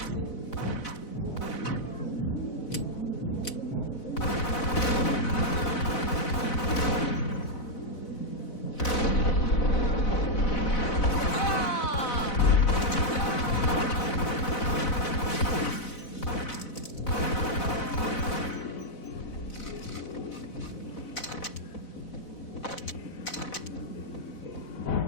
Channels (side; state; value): right; late; 4.0 ms